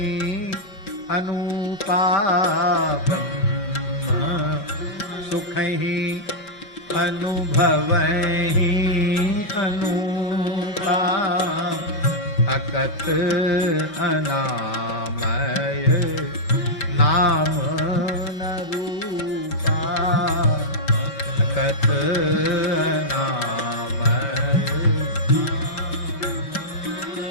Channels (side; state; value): right; late; 5.2 ms